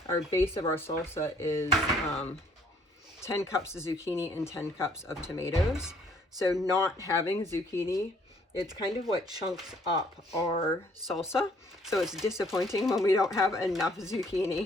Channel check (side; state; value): both; normal; correlation 0.62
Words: Our base of our salsa is 10 cups of zucchini and 10 cups of tomatoes. So not having zucchini, it's kind of what chunks up our salsa. So it's disappointing when we don't have enough